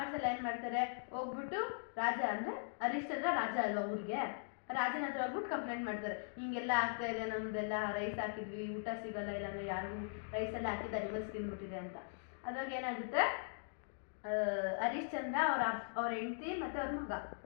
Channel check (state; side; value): silent; right; digital silence